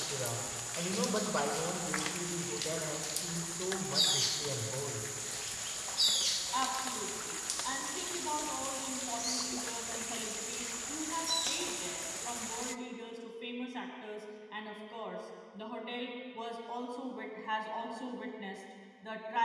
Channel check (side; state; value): both; identical; correlation 1.00